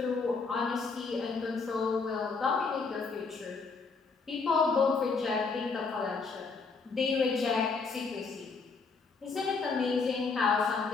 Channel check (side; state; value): right; quieter; 4.6 dB